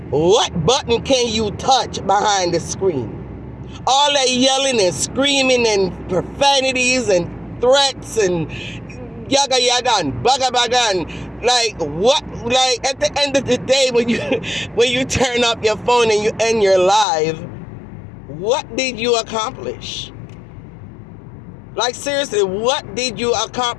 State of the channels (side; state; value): right; drops out; at 17.1 s